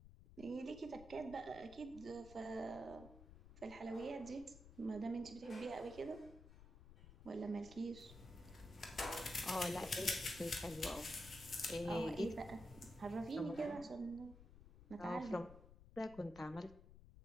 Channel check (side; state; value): left; noise; rumble, 16 dB below the sound